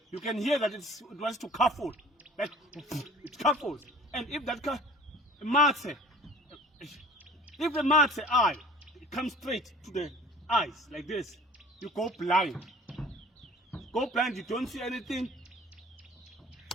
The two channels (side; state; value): both; normal; correlation 0.47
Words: you can hear that it wants to cuffle. Like it cuffles. And if that if the matse eye comes straight to the eyes like this, you go blind. Go blind, you don't see anything.